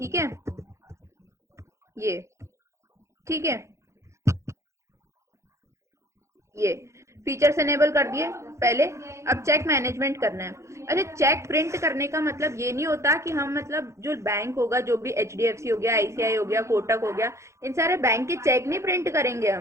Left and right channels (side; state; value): left; late; 0.14 ms